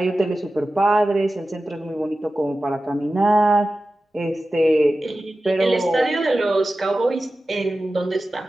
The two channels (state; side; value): normal; both; correlation 0.94